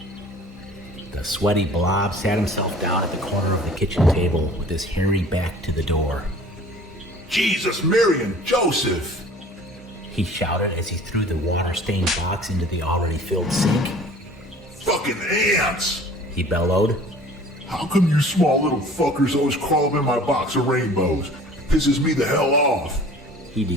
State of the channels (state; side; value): normal; both; correlation 0.48